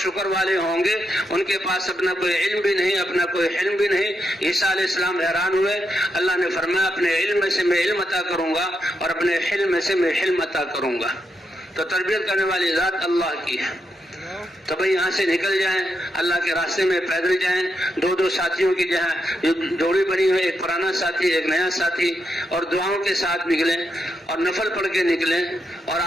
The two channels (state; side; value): normal; both; correlation 0.83